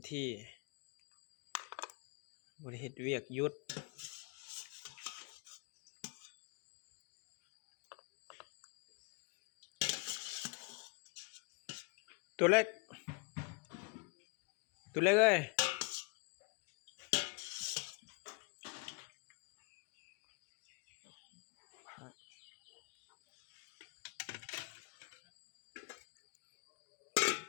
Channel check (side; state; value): right; quieter; 32.3 dB